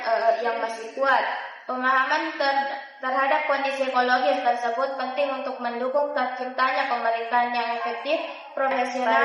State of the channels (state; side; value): identical; both; correlation 1.00